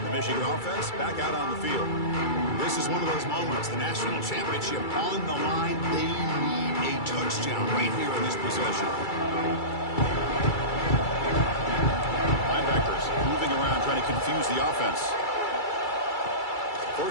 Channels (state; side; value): late; right; 2.3 ms